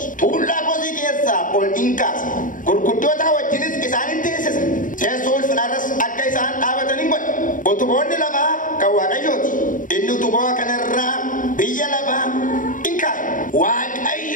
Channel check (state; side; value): late; right; 0.38 ms